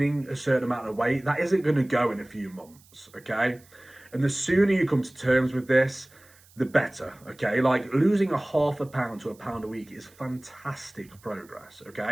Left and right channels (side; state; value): right; noise; hiss, 27 dB below the sound